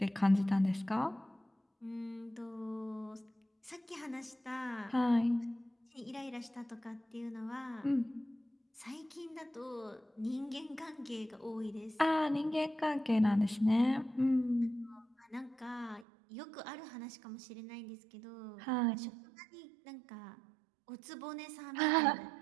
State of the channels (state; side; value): drops out; left; at 16.1 s